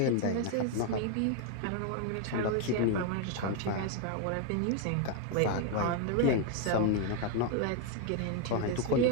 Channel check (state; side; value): different; both; correlation 0.01